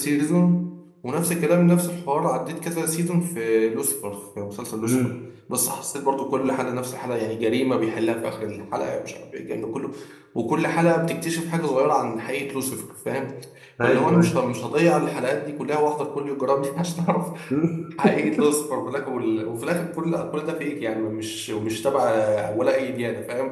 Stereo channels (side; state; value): both; identical; correlation 1.00